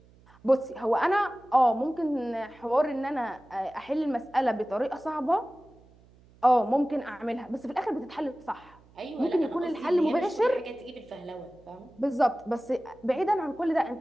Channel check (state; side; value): noise; right; hum, 27 dB below the sound